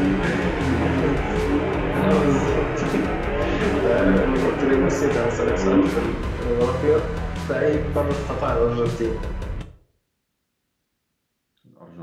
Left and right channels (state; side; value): identical; both; correlation 1.00